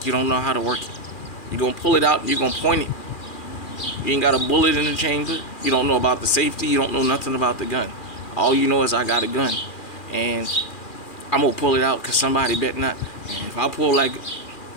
you don't know how to work it. You're gonna pull it out and you're gonna point it. You ain't got a bullet in the chamber. You don't know about the safety. You don't know nothing about the gun. All you know is I got a gun. And I'm gonna pull it out because somebody bet not. And if I pull like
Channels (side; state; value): right; late; 2.4 ms